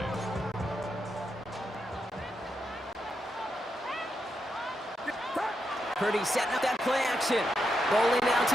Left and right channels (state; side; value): normal; both; correlation 0.84